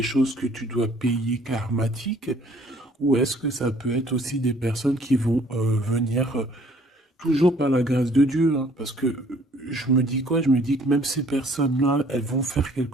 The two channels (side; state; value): both; normal; correlation 0.58